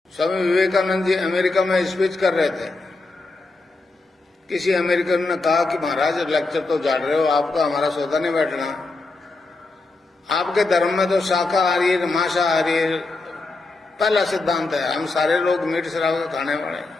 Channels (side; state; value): right; quieter; 3.4 dB